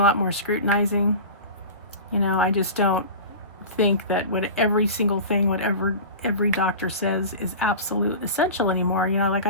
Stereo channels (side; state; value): both; inverted; correlation -0.32